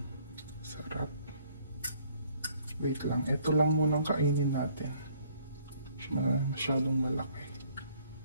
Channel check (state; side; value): inverted; both; correlation -0.61